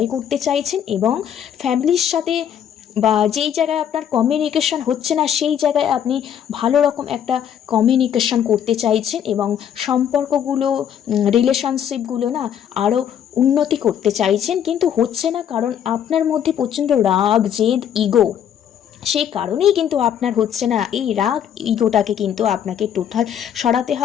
করতে চাইছেন, এবং ফ্যামিলির সাথে বা যেই জায়গায় আপনার কমিউনিকেশন হচ্ছে না সেই জায়গায় আপনি ভালো রকম একটা কমিউনিকেশন করতে চাইছেন, এবং সম্পর্কগুলো, রিলেশনশিপগুলো না আরও উন্নতি করতে চাইছেন, কিন্তু হচ্ছে না, কারণ আপনার মধ্যে প্রচণ্ড রাগ জেদ ইগো, সেই কারণেই কিন্তু আপনার হচ্ছে না। এই রাগ ইগোটাকে কিন্তু আপনাকে টোটাল সরাতে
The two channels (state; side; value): quieter; right; 9.3 dB